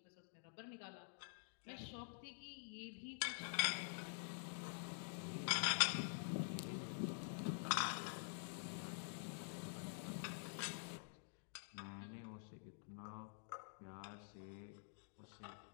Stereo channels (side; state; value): right; silent; digital silence